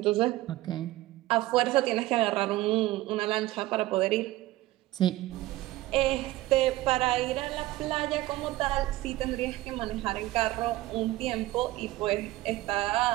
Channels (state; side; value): quieter; left; 17.2 dB